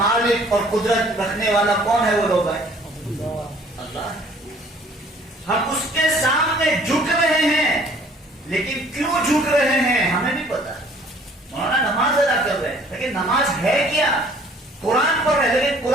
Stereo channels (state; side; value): normal; both; correlation 0.56